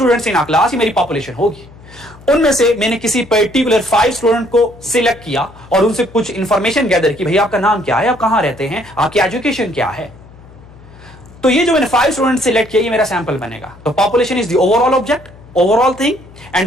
इन क्लास ही मेरी पॉपुलेशन होगी। उनमें से मैंने किसी पर्टिकुलर 5 स्टूडेंट को सिलेक्ट किया और उनसे कुछ इंफॉर्मेशन गैदर की, भैया आपका नाम क्या है, आप कहां रहते हैं, आपकी एजुकेशन क्या है। तो ये जो मैंने 5 स्टूडेंट सिलेक्ट किया ये मेरा सैंपल बनेगा। तो population is the overall object, overall thing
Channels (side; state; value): left; noise; hum, 22 dB below the sound